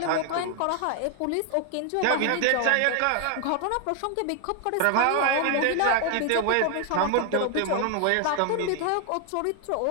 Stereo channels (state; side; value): different; both; correlation 0.01